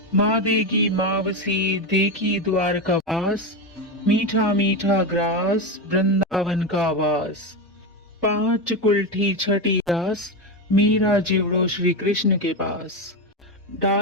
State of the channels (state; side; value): normal; both; correlation 0.14